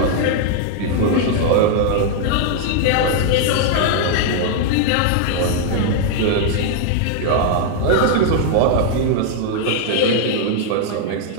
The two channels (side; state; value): both; different; correlation -0.01